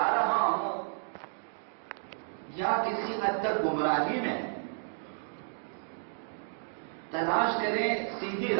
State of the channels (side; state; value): left; silent; digital silence